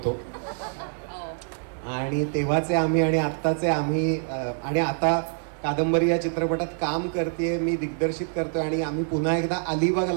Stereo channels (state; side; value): silent; left; 61 dB below the other